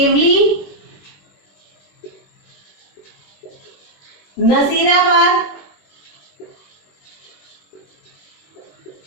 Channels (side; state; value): right; late; 21 ms